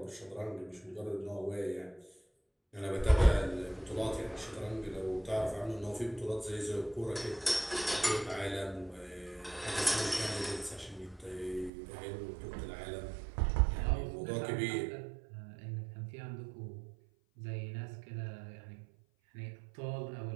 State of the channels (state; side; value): drops out; left; at 11.7 s